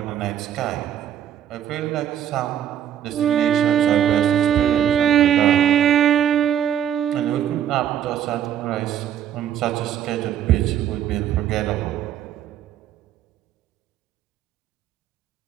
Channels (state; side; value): quieter; left; 10.1 dB